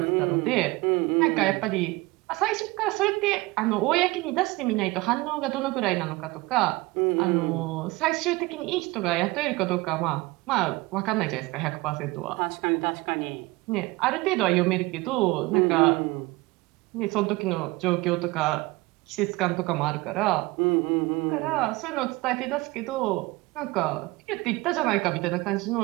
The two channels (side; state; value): left; quieter; 21.8 dB